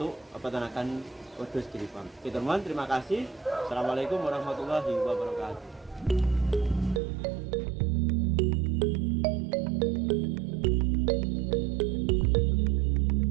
peternakan Wedhus Giri Farm. Oke teman-teman, terima kasih. Assalamualaikum warahmatullahi wabarakatuh.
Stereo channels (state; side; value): drops out; left; at 7.0 s